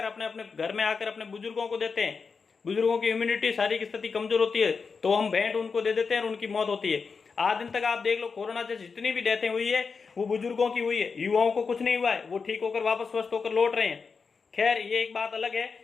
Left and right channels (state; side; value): quieter; right; 5.1 dB